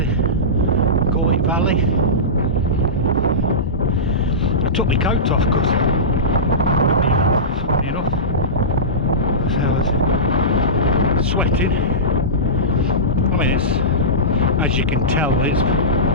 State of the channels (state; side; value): normal; both; correlation -0.18